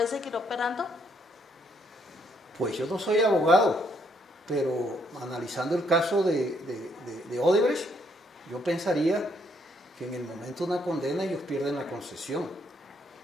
seguir operando? Pues yo no soy abogado, pero analizando el caso de Odebrecht, yo pensaría que en el momento de una condena ellos pierden la concesión.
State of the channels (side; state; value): both; normal; correlation 0.71